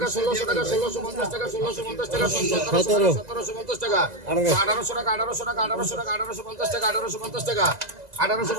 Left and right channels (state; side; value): late; left; 2.0 ms